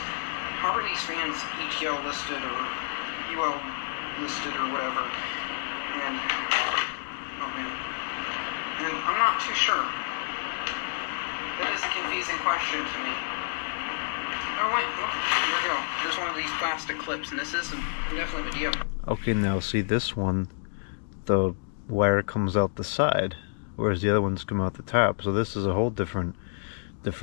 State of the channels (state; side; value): silent; right; digital silence